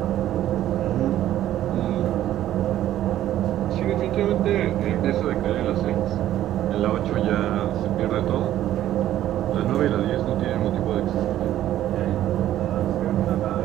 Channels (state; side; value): quieter; left; 12.7 dB